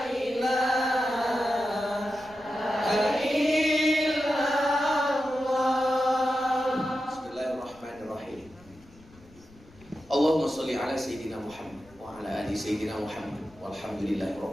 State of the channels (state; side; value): noise; left; rumble, 25 dB below the sound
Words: Allahumma sholli ala sayyidina Muhammad wa ala ali sayyidina Muhammad walhamdulillahi